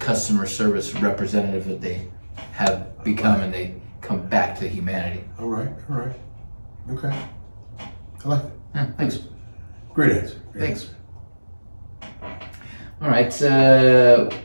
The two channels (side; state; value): both; inverted; correlation -1.00